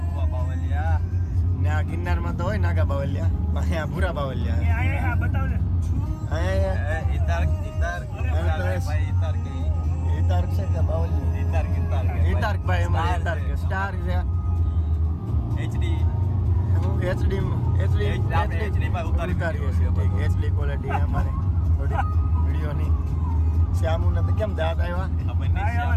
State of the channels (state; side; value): identical; both; correlation 1.00